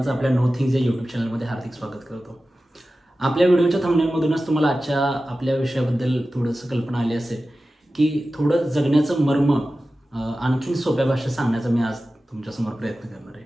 आपल्या नो थिंग्स या यूट्यूब चॅनलमध्ये हार्दिक स्वागत करतो। आपल्या व्हिडिओच्या थंबनेलमधूनच तुम्हाला आजच्या आपल्या विषयाबद्दल थोडंसं कल्पना आली असेल की थोडं जगण्याचं मर्म आणखीन सोप्या भाषेत सांगण्याचा मी आज तुमच्यासमोर प्रयत्न करणार आहे।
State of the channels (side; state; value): both; normal; correlation 0.95